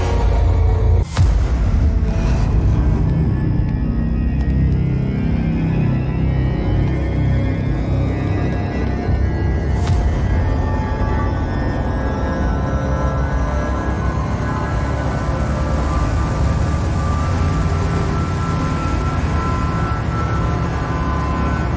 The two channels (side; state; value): both; identical; correlation 1.00